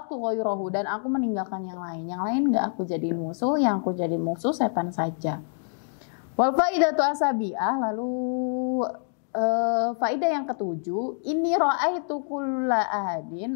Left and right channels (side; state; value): right; silent; digital silence